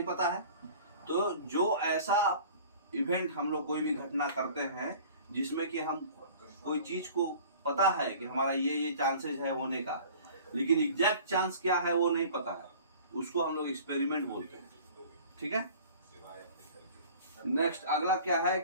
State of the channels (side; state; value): both; inverted; correlation -0.46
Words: पता है। तो जो ऐसा इवेंट हम लोग कोई भी घटना करते हैं जिसमें कि हम कोई चीज को पता है कि हमारा ये चांसेस है होने का, लेकिन एग्जैक्ट चांस क्या है वो नहीं पता है, उसको हम लोग एक्सपेरिमेंट बोलते हैं। ठीक है। नेक्स्ट अगला क्या है